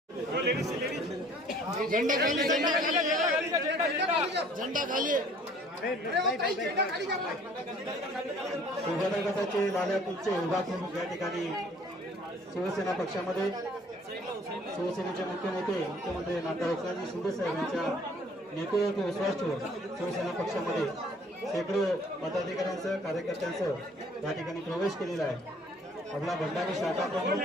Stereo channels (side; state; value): both; normal; correlation 0.55